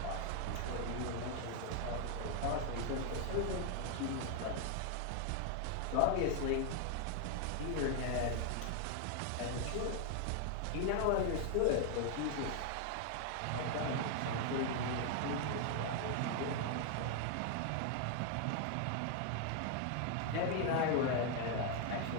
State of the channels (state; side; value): different; both; correlation 0.00